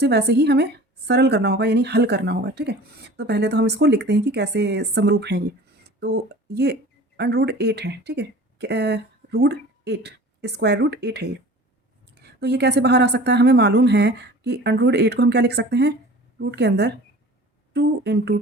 वैसे ही हमें सरल करना होगा, यानी हल करना होगा। ठीक है, तो पहले तो हम इसको लिखते हैं कि कैसे समरूप हैं ये। तो ये √8 है। ठीक है, √8 स्क्वायर रूट 8 है ये। तो ये कैसे बाहर आ सकता है? हमें मालूम है कि √8 को हम क्या लिख सकते हैं, रूट के अंदर 2 ×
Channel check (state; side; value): normal; both; correlation 0.42